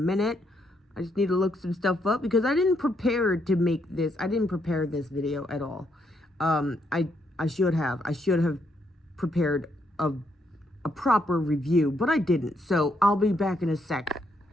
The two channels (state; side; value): normal; both; correlation 0.75